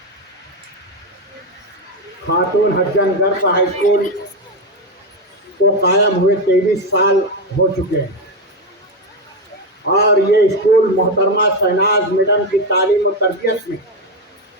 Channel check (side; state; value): both; normal; correlation 0.09